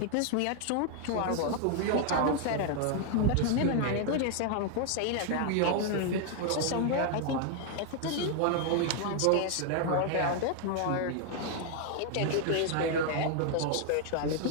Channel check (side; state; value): both; different; correlation 0.00